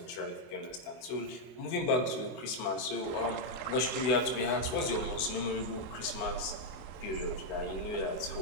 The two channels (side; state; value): right; late; 24 ms